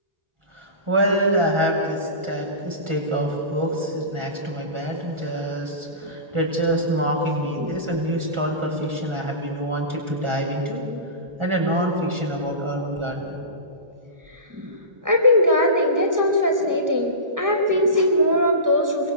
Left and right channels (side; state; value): left; late; 1.4 ms